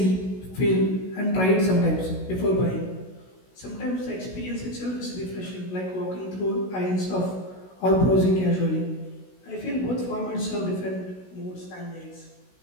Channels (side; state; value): right; late; 16 ms